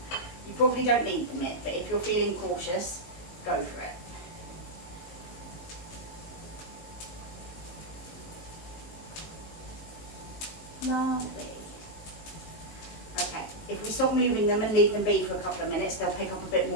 probably don't need the mitt, but if you're feeling cautious, go for it. Lovely. Okay, if we stop moving them and leave them be for a couple of minutes, they'll pick up a bit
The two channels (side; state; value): right; late; 19 ms